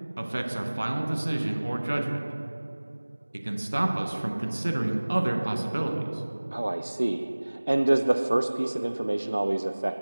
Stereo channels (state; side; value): inverted; both; correlation -1.00